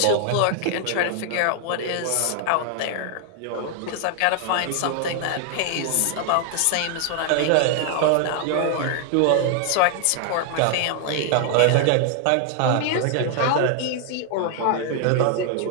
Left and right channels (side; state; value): both; different; correlation 0.00